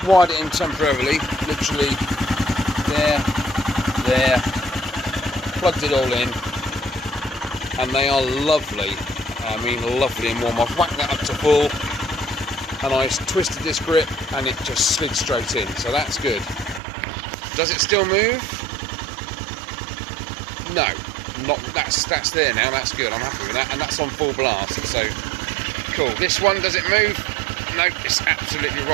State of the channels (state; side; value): drops out; left; at 16.8 s